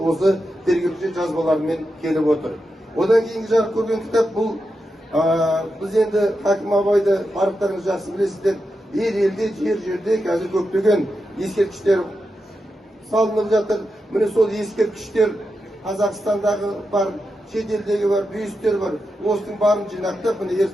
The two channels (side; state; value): both; normal; correlation 0.88